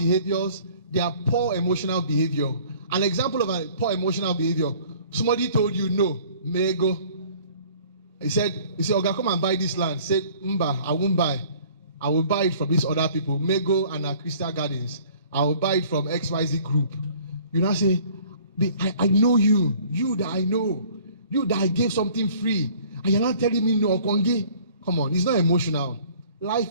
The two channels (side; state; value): both; inverted; correlation -0.53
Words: there are poor emotional behavior. An example of a poor emotional behavior, somebody told you no, may go. He said, Oga, come and buy this land. Say, Mba, I won't buy. I will buy it from these other people, Mego and Crystal Gardens. I will buy it from XYZ group. You now say, I know you that I know, you that I gave something free, and you're not telling me no, Kongi. Come on, it's not emotional.